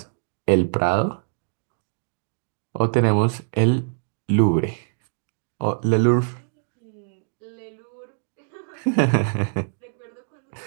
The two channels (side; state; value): left; silent; digital silence